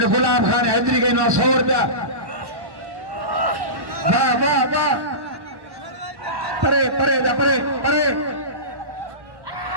गुलाब खान हैदरी गई 100 रुपया वाह वाह वाह परे परे परे परे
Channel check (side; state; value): left; late; 1.1 ms